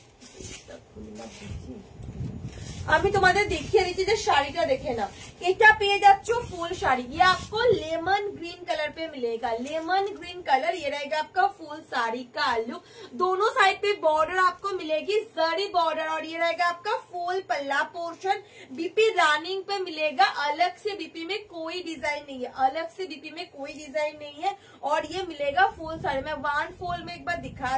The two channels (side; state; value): both; identical; correlation 1.00